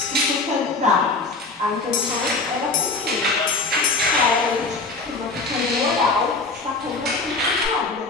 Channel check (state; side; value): quieter; right; 3.7 dB